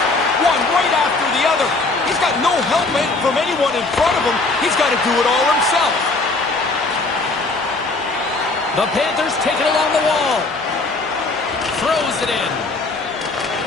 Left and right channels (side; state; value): right; quieter; 3.4 dB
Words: One right after the other. He's got no help from anyone in front of him. He's got to do it all himself. The Panthers take it along the wall. Throws it in.